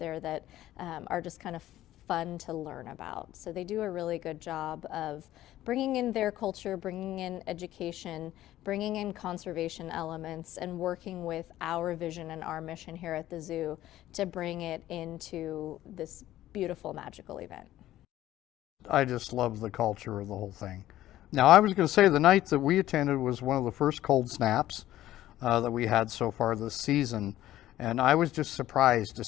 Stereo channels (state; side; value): quieter; right; 14.1 dB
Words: that are just kind of fun to learn about. So they do a really good job of bringing in their culture, bringing in education, bringing in conservation elements, and working with our vision and our mission here at the zoo to bring it into this beautiful, magical event. I just love the culture of the whole thing. Now, I was going to say the night that we attended was one of the first cold snaps that we had so far this season. And I was just surprised to